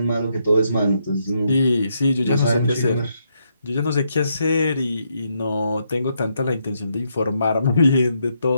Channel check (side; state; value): both; inverted; correlation -0.77